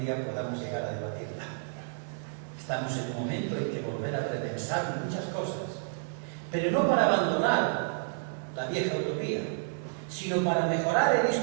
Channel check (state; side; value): silent; left; digital silence